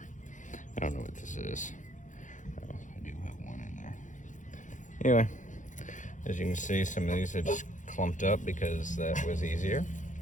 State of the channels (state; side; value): late; right; 0.36 ms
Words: I don't know what this is. Oh, I do have one in there. Anyway, as you can see, some of these are just clumped up because that was easier.